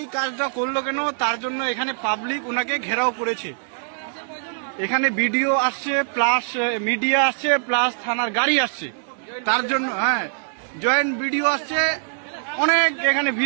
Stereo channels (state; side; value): silent; left; 64 dB below the other